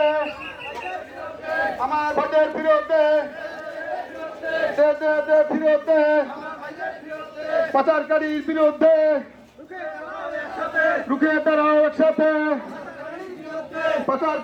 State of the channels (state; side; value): identical; both; correlation 1.00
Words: আমার ভোটের ফিরতে ফিরতে পাচারকারীর বিরুদ্ধে রুখে দাঁড়াও একসাথে।